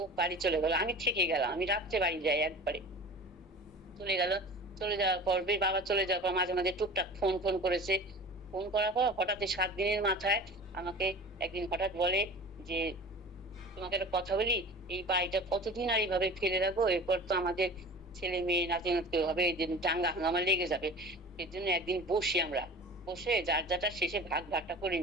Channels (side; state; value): both; normal; correlation 0.38